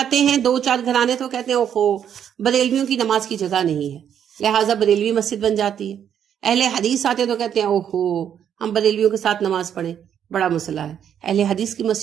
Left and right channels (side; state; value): left; quieter; 9.0 dB